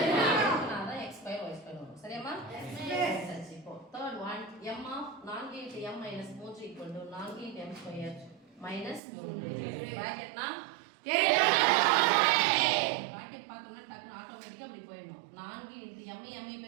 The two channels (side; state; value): left; drops out; at 9.0 s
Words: x square y square வரும். சரியாமா? சரி. இப்போ third one m of 4 into m minus 3 equal to 4 into m square minus 3. பிராக்கெட்னா bracket பார்த்தோம்னா டக்குனு ஆட்டோமேட்டிக்கா அப்படி போயிடும். 4 into m